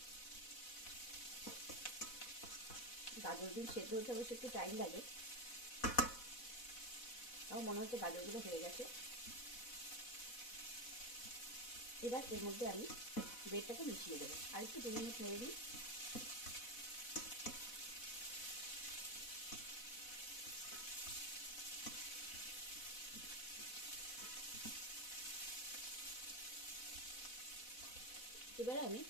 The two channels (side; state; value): right; late; 4.0 ms